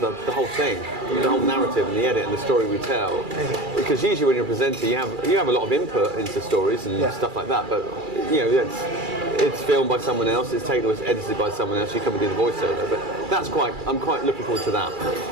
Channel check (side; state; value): left; late; 2.3 ms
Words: whole thing, the whole narrative and the edit and the story we tell. Because usually when you're a presenter, you have a lot of input into stories and stuff like that, but it's filmed by someone else, it's taken, it's edited by someone else. You come and do the voiceover, but I'm quite looking forward to that.